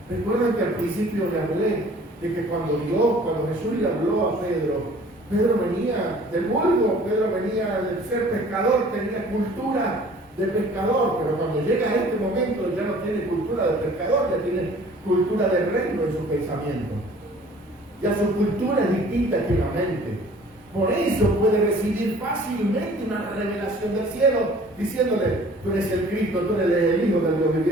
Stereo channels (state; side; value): normal; both; correlation 0.51